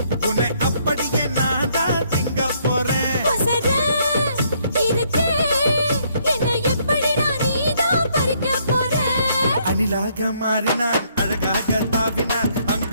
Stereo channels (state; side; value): inverted; both; correlation -0.69